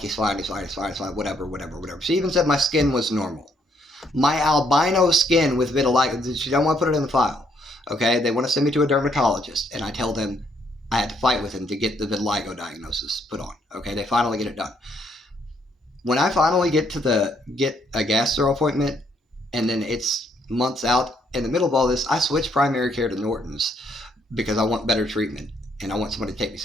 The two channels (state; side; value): normal; both; correlation 0.71